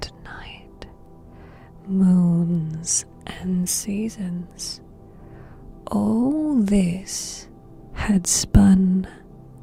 night, moons and seasons, all this had spun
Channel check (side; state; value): both; identical; correlation 1.00